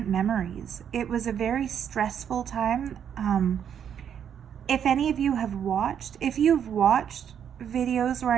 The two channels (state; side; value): quieter; left; 8.6 dB